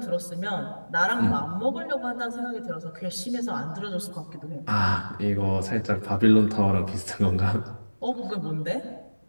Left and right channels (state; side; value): inverted; both; correlation -1.00